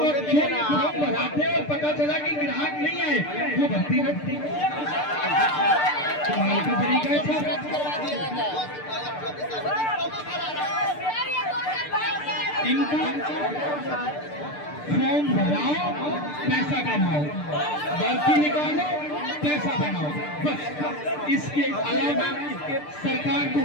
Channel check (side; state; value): right; late; 6.7 ms